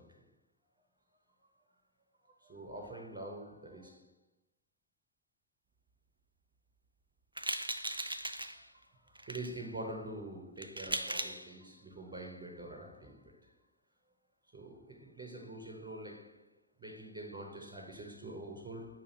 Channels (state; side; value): inverted; both; correlation -0.44